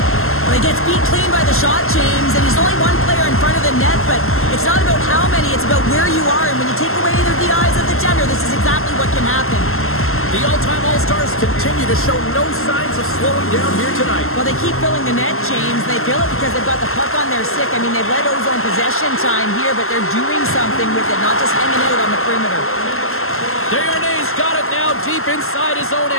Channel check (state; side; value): late; right; 0.62 ms